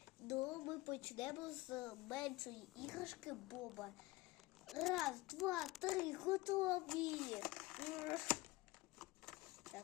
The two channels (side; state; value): right; quieter; 20.0 dB